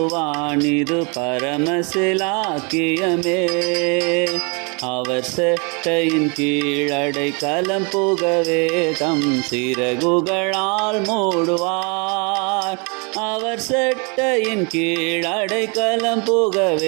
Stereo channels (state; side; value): quieter; left; 33.3 dB